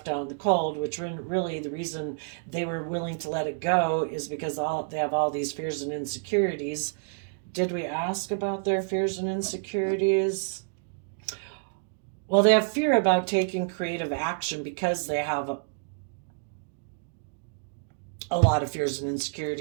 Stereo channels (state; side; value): silent; left; digital silence